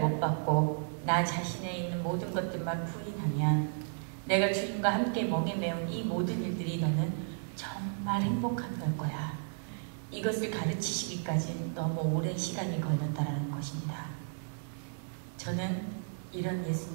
못 박고 나 자신에 있는 모든 것들만 부인하면 내가 주님과 함께 멍에 매운 이 모든 일들이 너는 정말 행복한 걸 거야. 이것을 가르치시기까지 너무 오랜 시간이 걸렸다라는 것입니다. 저는 이런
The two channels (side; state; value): left; silent; digital silence